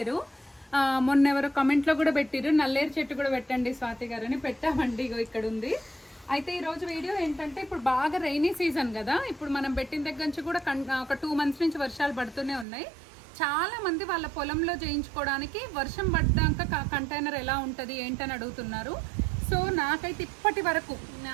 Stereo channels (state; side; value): drops out; left; at 12.7 s